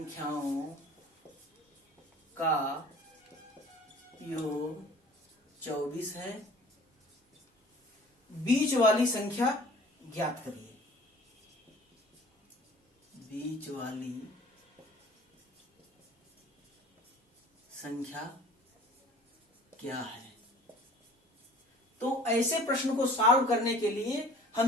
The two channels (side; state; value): both; normal; correlation 0.48